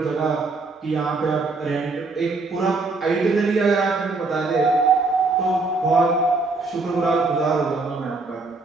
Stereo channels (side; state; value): left; quieter; 3.7 dB